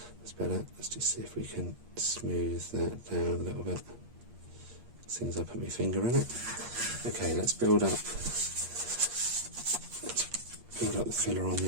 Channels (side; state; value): left; late; 8.5 ms